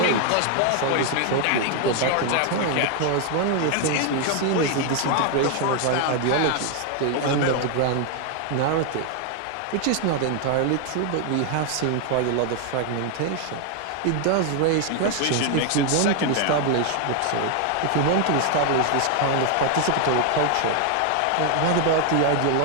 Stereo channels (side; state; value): both; different; correlation 0.01